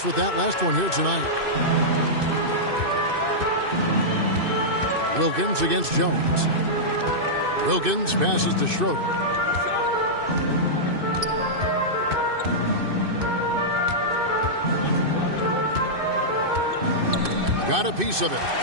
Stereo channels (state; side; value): late; left; 2.6 ms